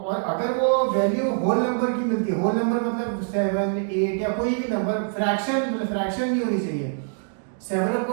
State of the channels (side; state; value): left; silent; digital silence